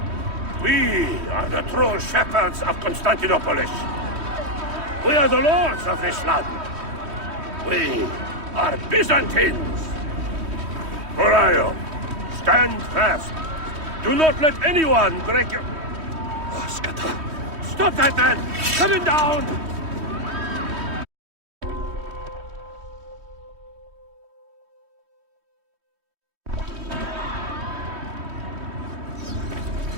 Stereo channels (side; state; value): left; late; 3.1 ms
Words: We are the true shepherds of Constantinopolis. We are the lords of this land. We are Byzantines. Morayo, stand fast. Do not let anyone break your... Oh, Skata. Stop that man! Coming down!